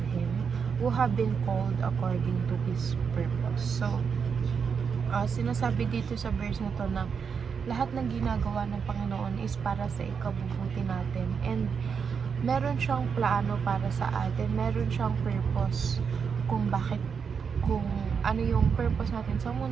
Him, who have been called according to His purpose. So, sinasabi dito sa verse na to na lahat ng ginagawa ng Panginoon is para sa ikabubuti natin, and meron siyang plano para sa atin, meron siyang purpose kung ano yung purpose natin sa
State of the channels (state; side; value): quieter; left; 6.3 dB